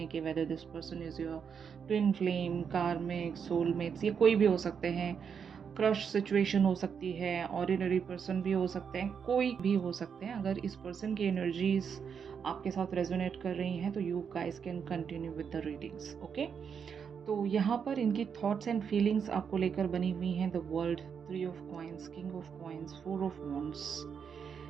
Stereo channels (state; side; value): quieter; left; 6.9 dB